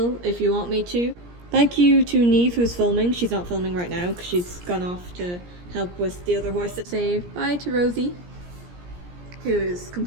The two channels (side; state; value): left; late; 17 ms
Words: if you want me to. Thank you to Neve who's filming. She's not filming right now because she's gone off to help with the other horse. Say bye to Rosie, who is